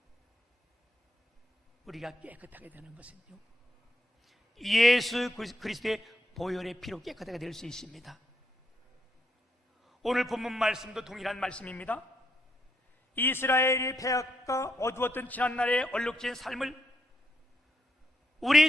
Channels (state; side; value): normal; both; correlation 0.79